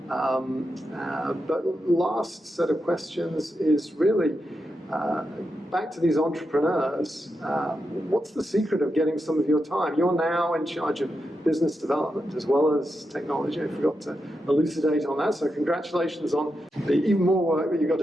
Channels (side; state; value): both; normal; correlation 0.87